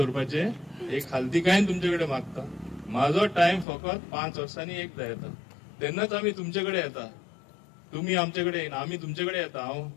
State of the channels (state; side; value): drops out; right; at 3.7 s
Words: एक खालतीकायेन तुमचे कडेन मागता, म्हाजो टायम फकत 5 वर्सांनी एकदा येता, तेन्नाच आमी तुमचे कडेन येता. तुम्ही आमचे कडेन येना, आमी तुमचे कडेन येता. हांव